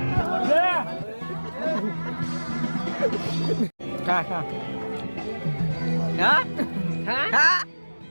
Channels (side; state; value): both; inverted; correlation -1.00